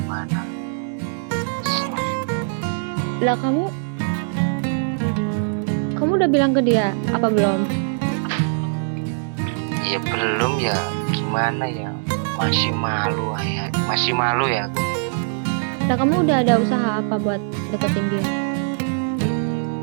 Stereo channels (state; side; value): silent; left; digital silence